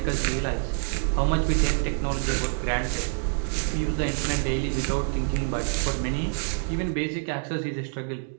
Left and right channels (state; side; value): silent; left; 60 dB below the other